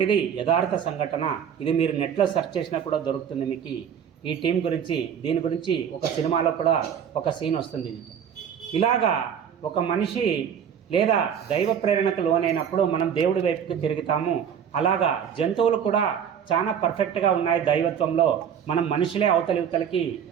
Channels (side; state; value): left; quieter; 8.2 dB